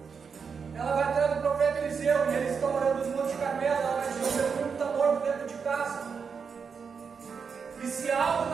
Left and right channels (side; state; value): left; quieter; 5.9 dB